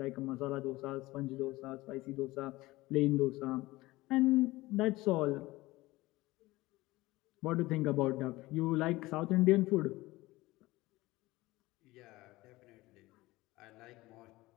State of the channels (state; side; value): quieter; right; 19.5 dB